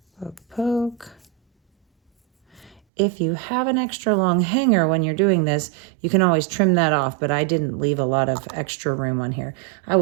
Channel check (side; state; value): left; drops out; at 2.8 s